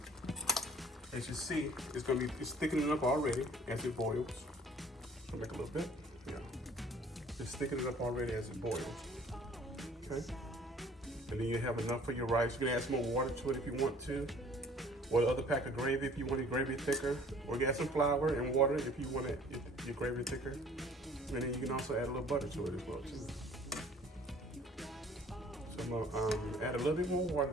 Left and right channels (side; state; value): both; normal; correlation 0.53